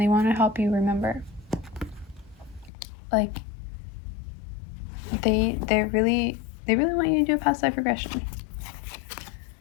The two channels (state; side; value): drops out; right; at 2.7 s